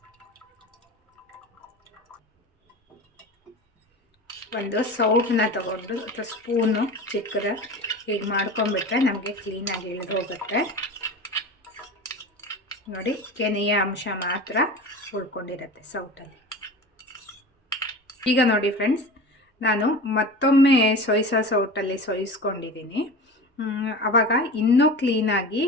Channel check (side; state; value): both; normal; correlation 0.33